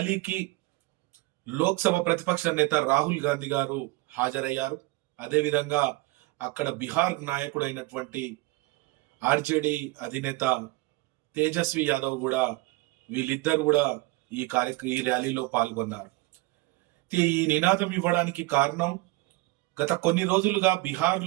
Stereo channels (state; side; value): quieter; left; 21.2 dB